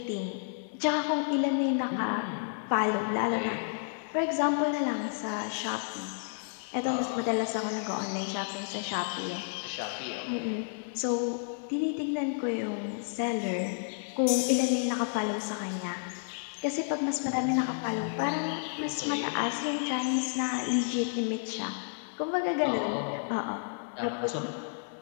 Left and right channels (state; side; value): silent; right; digital silence